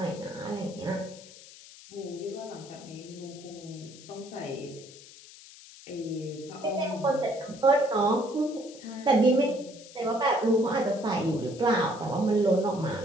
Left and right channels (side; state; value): left; noise; hiss, 19 dB below the sound